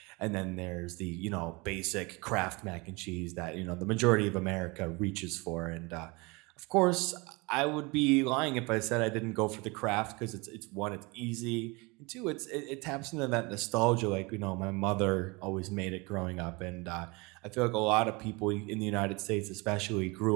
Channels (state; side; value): quieter; left; 26.6 dB